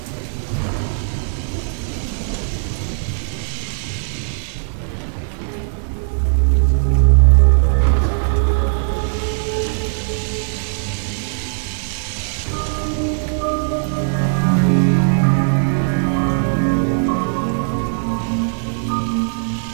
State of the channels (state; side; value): silent; left; digital silence